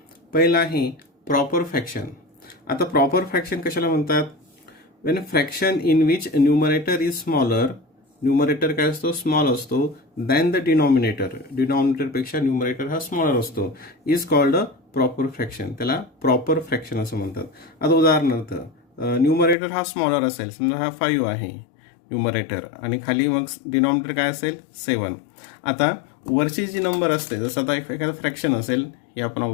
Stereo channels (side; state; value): right; drops out; at 19.6 s